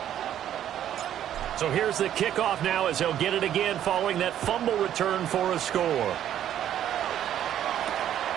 So here's the kickoff now as he'll get it again following that fumble return for a score.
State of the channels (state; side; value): quieter; left; 10.9 dB